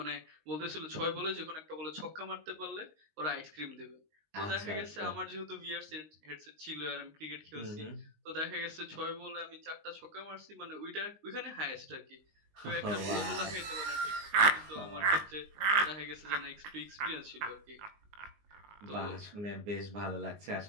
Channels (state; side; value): late; left; 19 ms